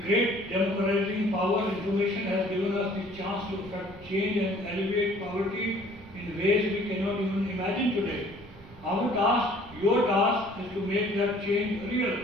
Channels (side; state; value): right; noise; rumble, 21 dB below the sound